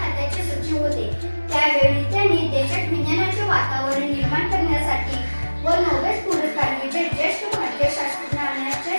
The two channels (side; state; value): both; inverted; correlation -1.00